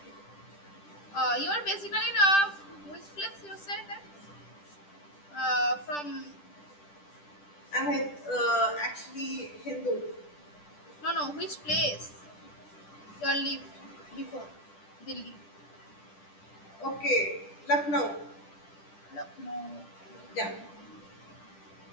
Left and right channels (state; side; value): late; right; 10 ms